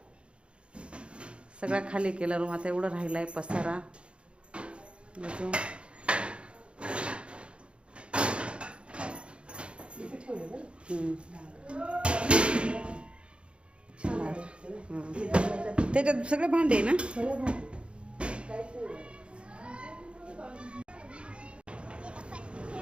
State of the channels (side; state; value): left; late; 0.057 ms